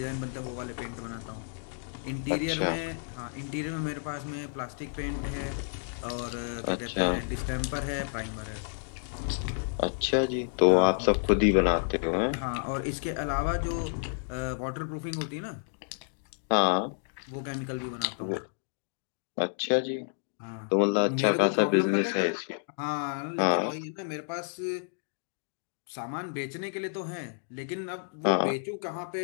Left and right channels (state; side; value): silent; right; digital silence